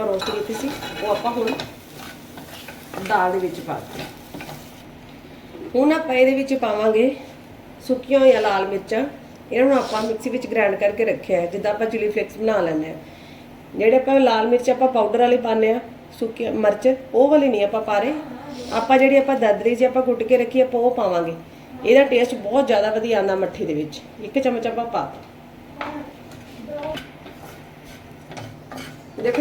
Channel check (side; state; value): both; identical; correlation 1.00